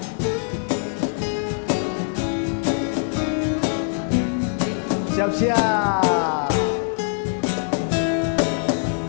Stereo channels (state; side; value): silent; right; 64 dB below the other